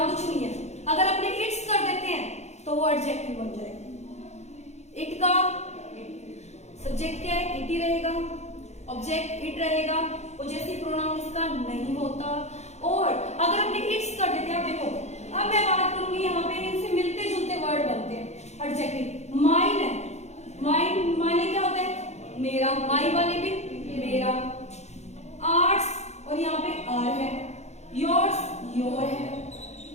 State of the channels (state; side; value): late; right; 0.32 ms